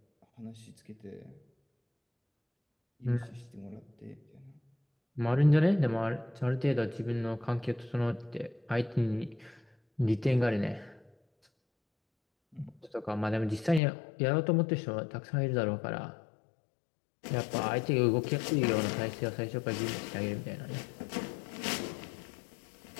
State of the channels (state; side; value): drops out; right; at 13.8 s